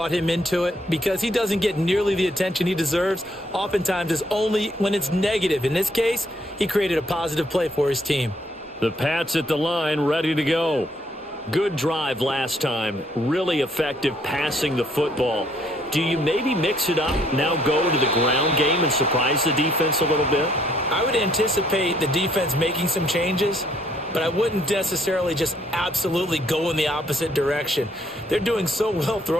him into it because he doesn't get nearly the attention he deserves. Oftentimes it's only when it's negative. In this case, he created a positive play for his team. The Pats at the line, ready to go. Good drive last time. Really effective passing the football. Do you maybe mix it up, now go to the ground game and surprise the defense a little bit? I would anticipate the defense making some changes, but I wouldn't necessarily just absolutely go in the opposite direction. They're doing so well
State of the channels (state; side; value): normal; both; correlation 0.67